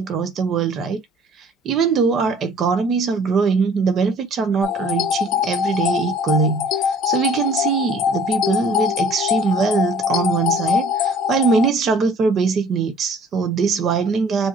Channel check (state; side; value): normal; both; correlation 0.52